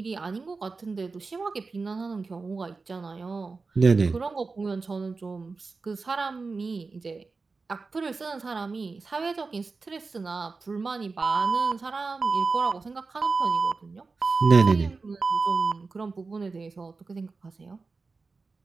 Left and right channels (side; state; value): left; quieter; 4.2 dB